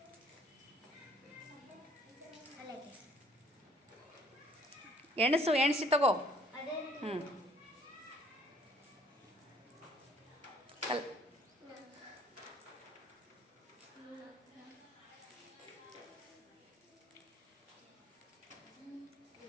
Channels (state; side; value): normal; both; correlation 0.59